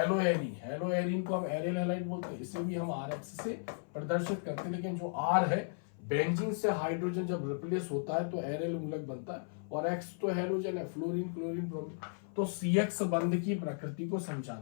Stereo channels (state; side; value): silent; right; 54 dB below the other